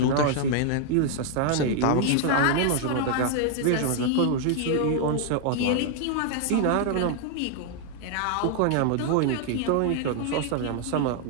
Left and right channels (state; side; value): different; both; correlation 0.00